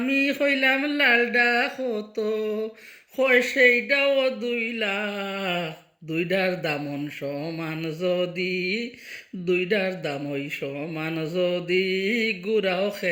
কইলাম লালডা কত। কয় সেইটাও 2 লাখ। দুইটার দামন সমান যদি, দুইটার দাম ওই সমান যদি, গুড়াও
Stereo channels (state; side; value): identical; both; correlation 1.00